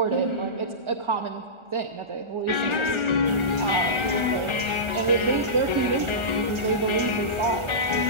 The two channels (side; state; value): left; late; 1.4 ms